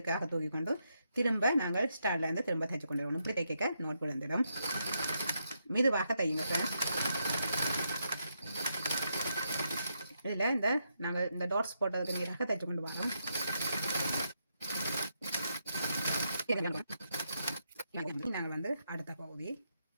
தூக்கி கொண்டு திரும்ப நாங்கள் ஸ்டார்ட்லேருந்து திரும்ப தைச்சு கொண்டு வரணும். இப்படி தைக்க நோட் விழுந்துடும். மெதுவாக தையுங்க ஃப்ரெண்ட்ஸ். இதில் நாங்கள் இந்த டாட்ஸ் போட்டதுக்கு நேராக தைச்சு கொண்டு வரோம். நாங்கள் வந்து அடுத்த பகுதி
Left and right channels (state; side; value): inverted; both; correlation -0.81